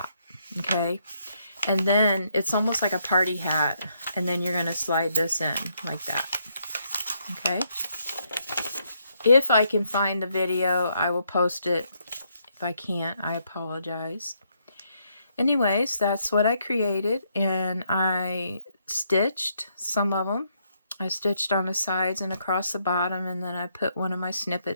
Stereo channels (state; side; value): inverted; both; correlation -0.75